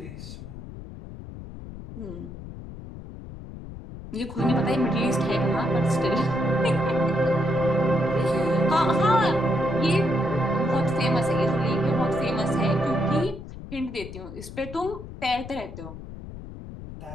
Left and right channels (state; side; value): noise; left; rumble, 12 dB below the sound